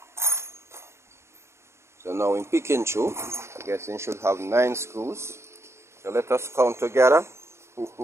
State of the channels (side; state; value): left; late; 0.13 ms